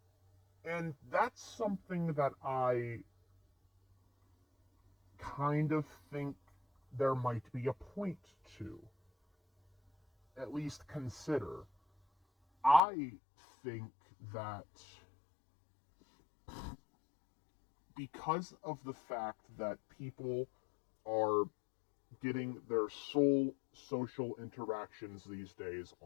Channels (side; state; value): right; drops out; at 12.8 s